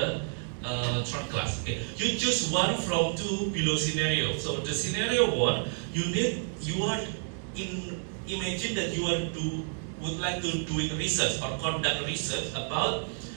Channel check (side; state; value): left; silent; 58 dB below the other